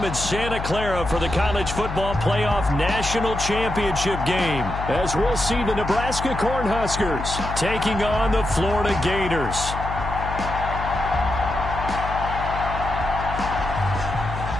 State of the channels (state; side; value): noise; left; hum, 6 dB below the sound